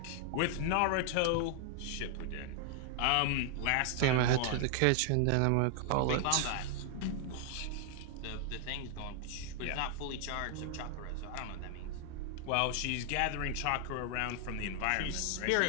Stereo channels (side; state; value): both; different; correlation 0.00